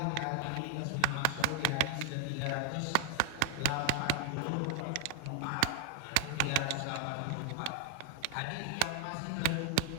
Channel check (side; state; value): both; different; correlation 0.00